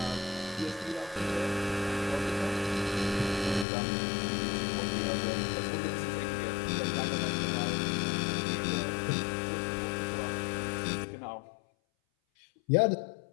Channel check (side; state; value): right; drops out; at 3.7 s